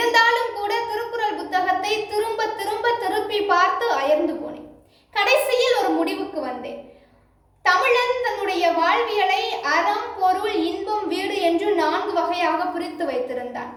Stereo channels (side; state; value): both; identical; correlation 1.00